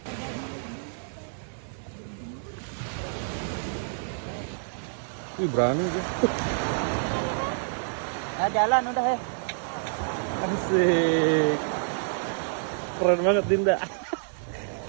Wih, berani dia. Jalan udah ya. Asik. Keren banget Dinda.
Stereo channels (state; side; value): silent; left; 59 dB below the other